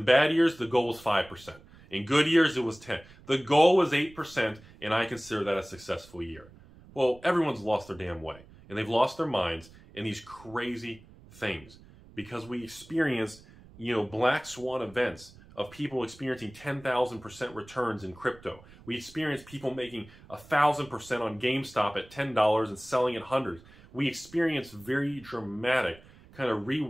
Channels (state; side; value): noise; right; rumble, 22 dB below the sound